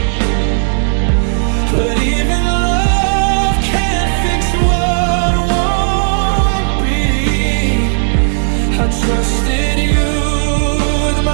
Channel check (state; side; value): silent; left; digital silence